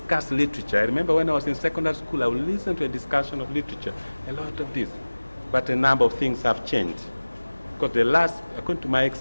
literature. I remember when I was in secondary school, I would listen to a discussion of literature, a lot of this. But a number of things have changed. Because according to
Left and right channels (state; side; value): inverted; both; correlation -1.00